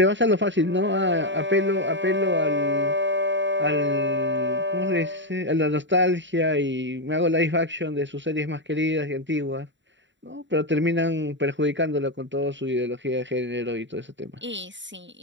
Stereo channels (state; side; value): late; left; 0.54 ms